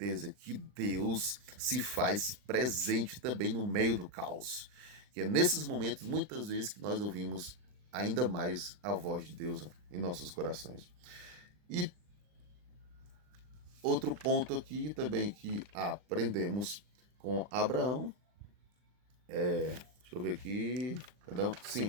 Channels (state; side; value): late; left; 39 ms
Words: que Deus se faz presente também no meio do caos. Que é nesses momentos, muitas vezes, que nós ouvimos ainda mais a voz de Deus em nossos corações. E outro ponto aqui também que aprendemos com Abraão, deixa eu ver aqui, perdão,